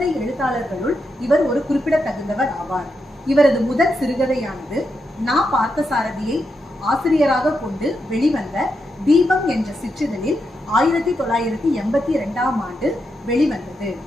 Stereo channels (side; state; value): both; normal; correlation 0.84